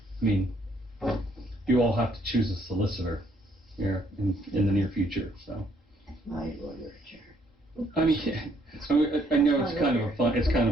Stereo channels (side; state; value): both; normal; correlation 0.68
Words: mean, you all have to choose a solicitor here in the near future, so. My lawyer, Chair. I mean, I know it's kind